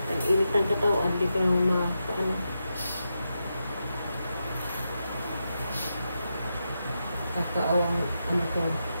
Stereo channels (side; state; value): both; inverted; correlation -0.87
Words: Ang init ng katawan, hindi ka kakaawang ko.